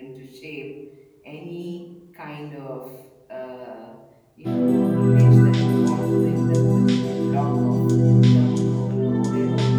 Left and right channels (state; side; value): identical; both; correlation 1.00